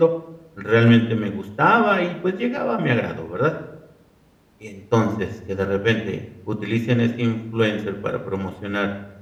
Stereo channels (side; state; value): both; identical; correlation 1.00